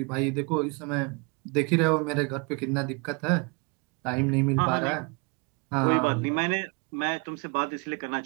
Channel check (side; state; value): left; quieter; 31.7 dB